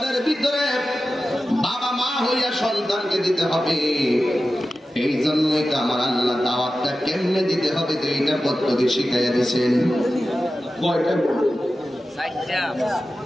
ভিতরে বাবা মা হইয়া সন্তানকে দিতে হবে। এই জন্যই তো আমার আল্লাহ দাওয়াতটা কেমনে দিতে হবে 2টা পদ্ধতি শিখাইয়া দিয়েছেন। কয়টা?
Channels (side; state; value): both; normal; correlation 0.94